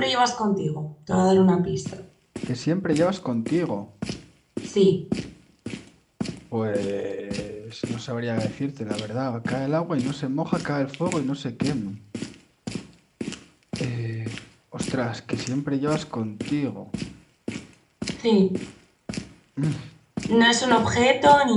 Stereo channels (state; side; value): identical; both; correlation 1.00